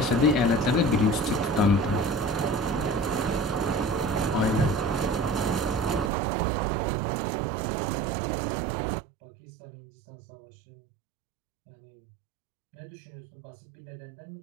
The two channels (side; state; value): left; drops out; at 6.1 s